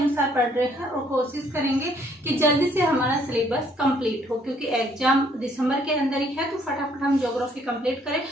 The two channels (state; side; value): normal; both; correlation 0.65